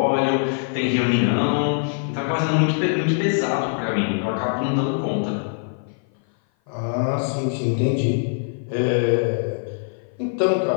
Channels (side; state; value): right; silent; 56 dB below the other